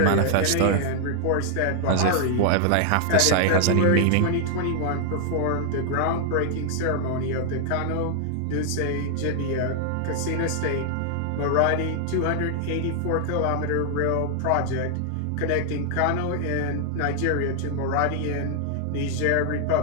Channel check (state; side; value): different; both; correlation 0.00